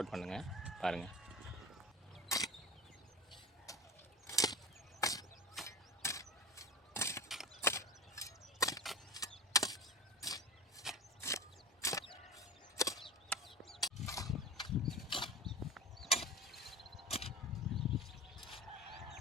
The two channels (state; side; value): normal; both; correlation 0.33